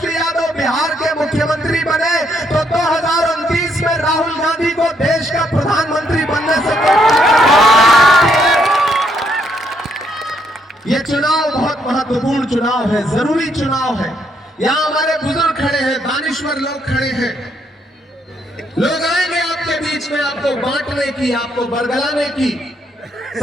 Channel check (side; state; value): both; normal; correlation 0.73